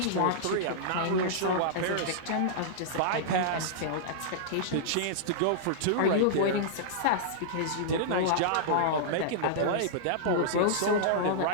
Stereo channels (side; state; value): both; different; correlation -0.02